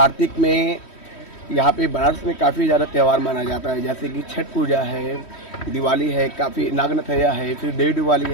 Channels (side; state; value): right; late; 3.1 ms